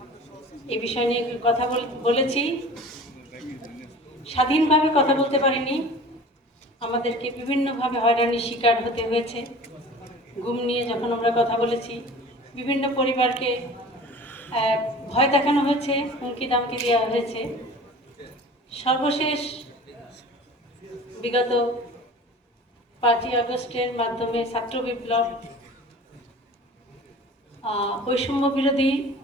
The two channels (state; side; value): normal; both; correlation 0.41